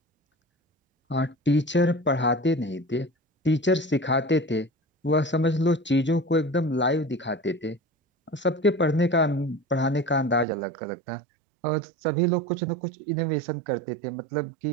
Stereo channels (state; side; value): drops out; left; at 10.5 s